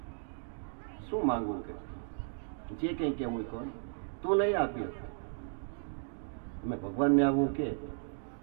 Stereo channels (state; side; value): silent; left; digital silence